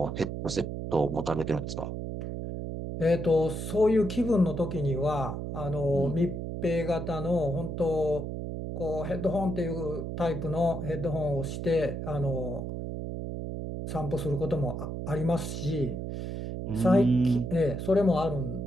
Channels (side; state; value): right; noise; hum, 5 dB below the sound